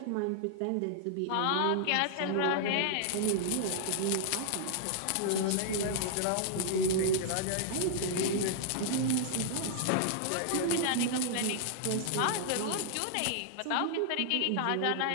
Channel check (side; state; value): both; different; correlation -0.01